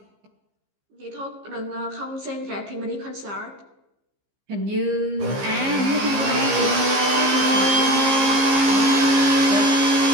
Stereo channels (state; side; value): late; left; 15 ms